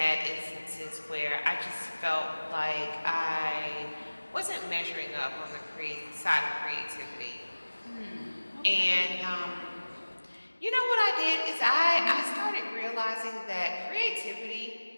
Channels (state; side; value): inverted; both; correlation -1.00